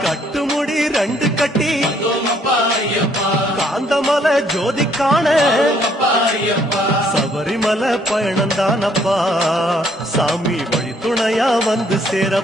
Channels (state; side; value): normal; both; correlation 0.66